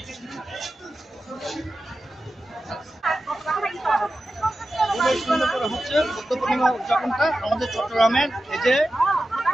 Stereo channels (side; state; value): both; normal; correlation 0.93